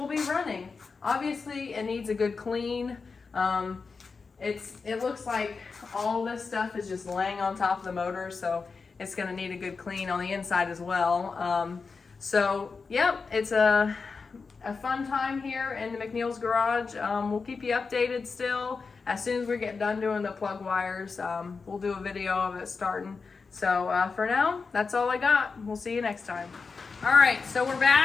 be running. Obviously it needs a good clean. It looks like all this stuff is just laying on top of the motor, so it's going to need a good clean on the inside as well. So, yep, it's a fun time here in the McNeil's Garage. We'll keep you updated still. As soon as we get done doing the plug wires, we'll do a video of it starting. So, for now, that's all I got. We'll see you next time. All right, so we're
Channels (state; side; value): quieter; right; 4.7 dB